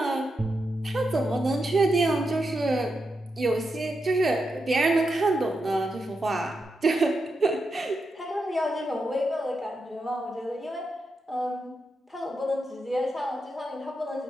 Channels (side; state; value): both; normal; correlation 0.86